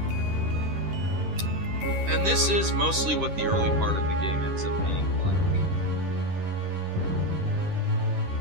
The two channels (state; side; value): late; left; 10 ms